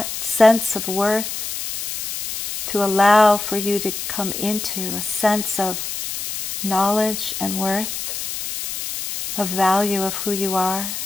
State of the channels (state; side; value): noise; left; hiss, 6 dB below the sound